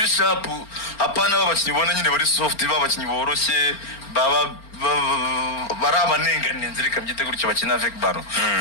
sharp apana babakinyi ubona nyine bari soft babakinyi boroshye baba barabanengane nzirika mbyite gutyo bakina avec ballon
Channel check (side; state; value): right; late; 4.4 ms